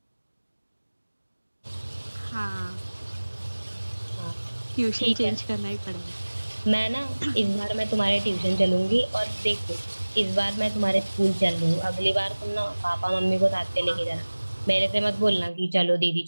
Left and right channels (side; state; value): both; inverted; correlation -1.00